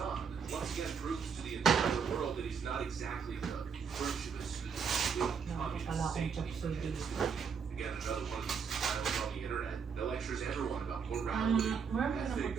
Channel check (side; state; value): left; quieter; 6.3 dB